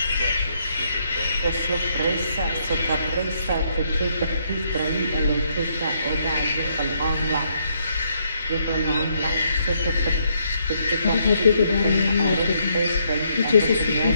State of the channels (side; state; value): both; inverted; correlation -0.73